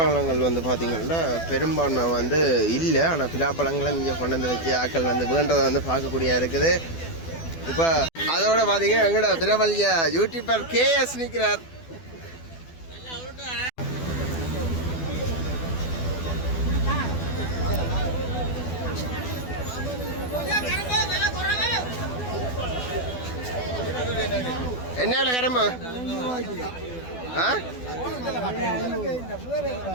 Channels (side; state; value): right; late; 12 ms